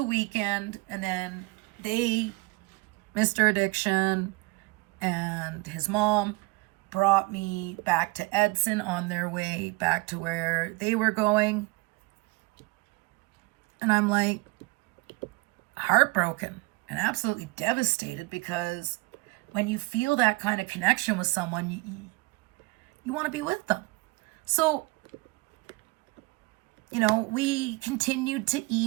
weekend, and then Mr. Addiction and his mom brought me back to Edson on their way back to where they were going. And I'm like heartbroken and absolutely devastated because when you feel that kind of connection with someone, you want to be with them. So, we continued to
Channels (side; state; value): left; quieter; 25.2 dB